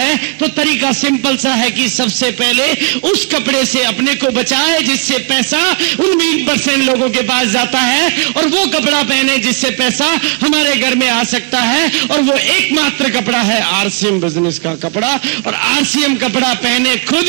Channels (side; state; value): left; quieter; 35.9 dB